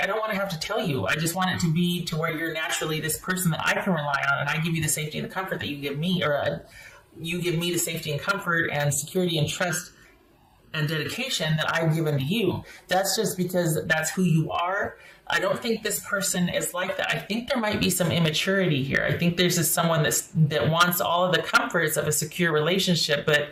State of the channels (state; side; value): identical; both; correlation 1.00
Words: I don't want to have to tell you. I just want it to be to where you're naturally this person that I can rely on, and I give you the safety and the comfort that you give me, or you give me the safety and comfort and security and trust and dedication that I've given to you. That's just because that's who you are. I don't think this person is like that. I think there might be some immaturity here. I think there's just someone that wants all of the comforts of a secure relationship,